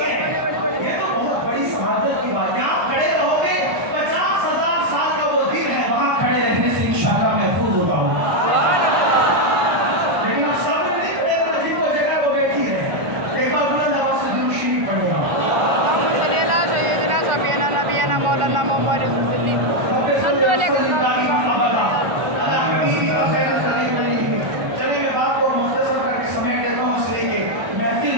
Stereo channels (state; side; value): late; left; 1.4 ms